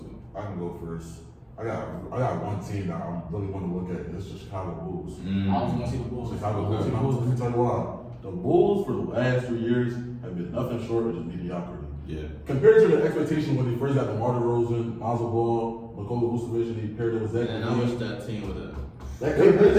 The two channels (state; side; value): identical; both; correlation 1.00